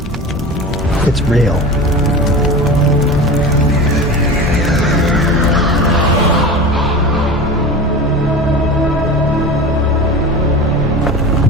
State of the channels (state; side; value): normal; both; correlation 0.32